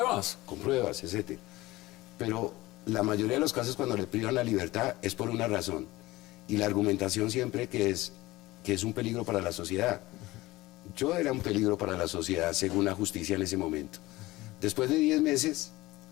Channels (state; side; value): quieter; right; 19.0 dB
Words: Con pruebas, etc. Pero la mayoría de los casos cuando le privan la libertad es por una razón. Y la argumentación siempre que es un peligro para la sociedad. Yo era un peligro para la sociedad según la justicia en ese momento. Después de 10 meses